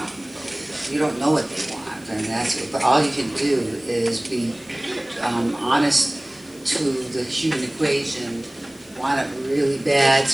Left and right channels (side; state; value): left; noise; hiss, 24 dB below the sound